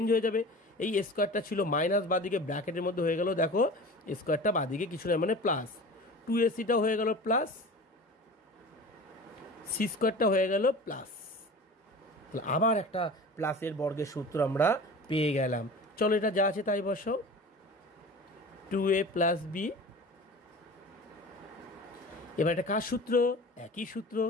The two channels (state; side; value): normal; both; correlation 0.37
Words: হয়ে যাবে। এই স্কোয়ারটা ছিল মাইনাস, বাদিকে ব্র্যাকেটের মধ্যে হয়ে গেল, দেখো স্কোয়ারটা বাদিকে কিছু নয় মানে প্লাস, 2ac-টাও হয়ে গেল প্লাস, সি স্কোয়ারটা হয়ে গেল প্লাস। তাহলে আবার একটা প্লাসের বর্গের সূত্র আমরা পেয়ে গেলাম। চলো এটা যা আছে তাই বসাও, 2a প্লাস বি। এবার এটা কার সূত্র, একই সূত্র।